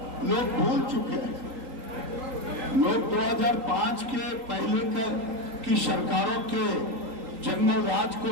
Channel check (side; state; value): left; late; 3.8 ms